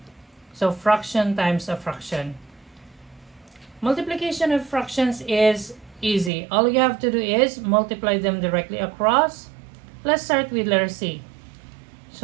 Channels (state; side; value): drops out; left; at 6.3 s